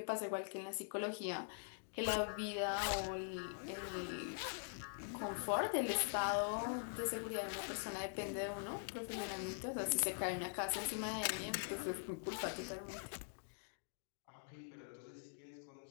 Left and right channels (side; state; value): right; silent; digital silence